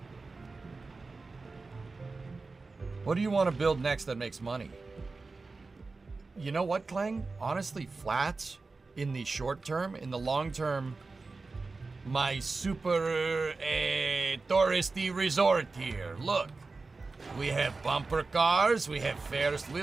What do you want to build next that makes money? You know what, Clang? Honestly, flats in the short term. In the long term, my super touristy resort here. Look. We have bumper cars, we have Ferris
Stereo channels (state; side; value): quieter; left; 3.9 dB